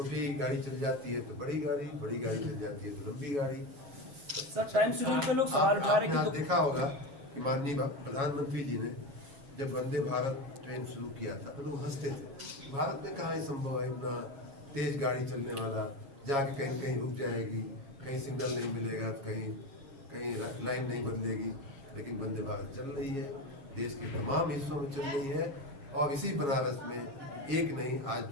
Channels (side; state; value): left; late; 6.3 ms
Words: गाड़ी चल जाती है तो बड़ी गाड़ी, बड़ी गाड़ी चल जाती है तो लंबी गाड़ी। सर टाइम शेड्यूल पे लोग सवाल उठा रहे हैं कि देखा होगा कि माननीय प्रधानमंत्री जी ने जब वंदे भारत ट्रेन शुरू किया था तो लोग हंसते थे, भारत में कहाँ संभव है इतना तेज गाड़ी चलने वाला, जाके कहीं कहीं रुक जाएगी, कहीं सिग्नल नहीं मिलेगा, कहीं लाइन नहीं बदलेगी। लेकिन वंदे भारत चल रही है, देश के तमाम हिस्सों में चल रही है और इसी बनारस में एक नहीं आज